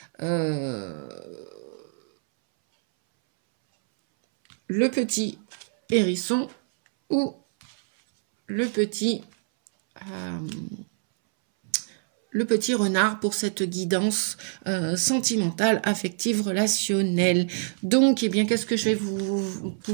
le petit hérisson ou le petit renard pour cette guidance sentimentale, affective, relationnelle. Donc, eh bien, qu'est-ce que je vais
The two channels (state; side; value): silent; left; 61 dB below the other